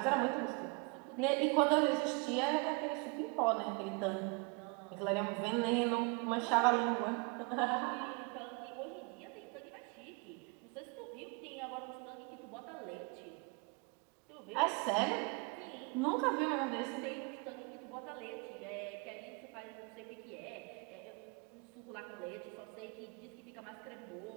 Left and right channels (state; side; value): quieter; left; 30.8 dB